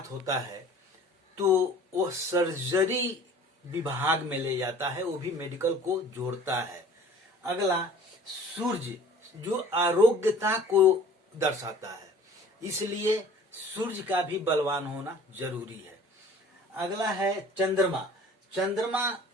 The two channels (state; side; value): normal; both; correlation 0.48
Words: होता है तो वो सर्जरी विभाग में ले जाता है, वो भी मेडिकल को जोड़ता है। अगला सूर्य, जो आरोग्यता को दर्शाता है, इसलिए सूर्य का भी बलवान होना जरूरी है। अगला है चंद्रमा। चंद्रमा